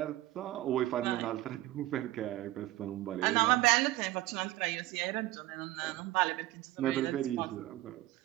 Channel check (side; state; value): left; quieter; 16.4 dB